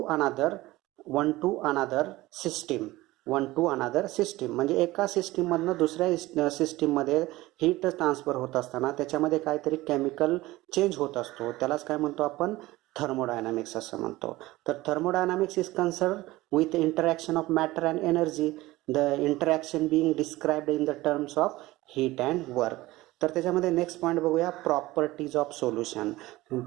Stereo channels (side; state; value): left; quieter; 18.6 dB